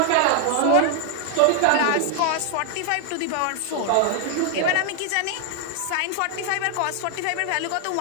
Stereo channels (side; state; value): both; different; correlation 0.00